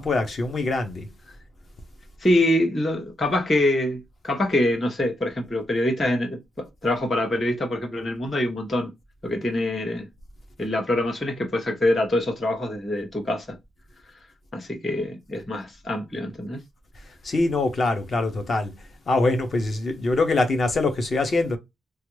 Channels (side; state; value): both; normal; correlation 0.83